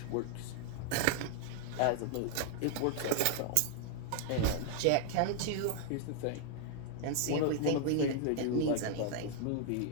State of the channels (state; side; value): different; both; correlation 0.00